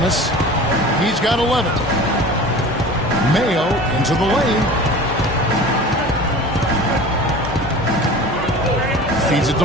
he's got 11. Mayo into the lane. feeds it to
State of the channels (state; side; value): normal; both; correlation 0.38